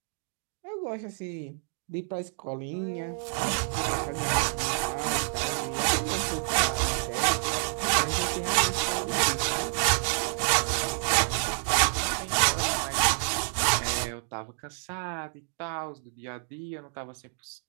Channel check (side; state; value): left; silent; 59 dB below the other